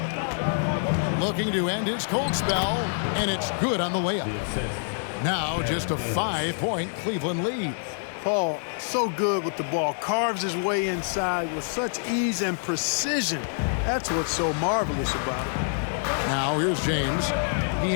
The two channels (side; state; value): right; silent; 61 dB below the other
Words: Looking to end his cold spell, and it's good on the layup. Now just a 5-point Cleveland lead. Paul, so good with the ball. Carves his way inside with such ease and precision. That's what's so marvelous about it. Now here's James. He